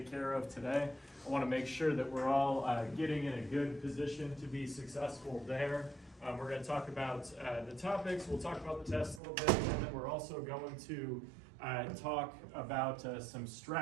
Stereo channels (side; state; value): left; drops out; at 9.2 s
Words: care of today. I want to make sure that we're all getting in a good position to be successful there. We're going to talk about the topics, we'll talk about the test a little bit, and then we're also going to talk about some